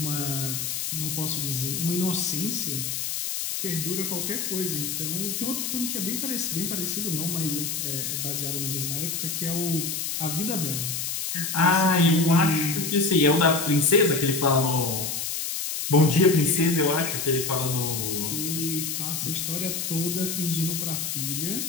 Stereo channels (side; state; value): left; noise; hiss, 3 dB below the sound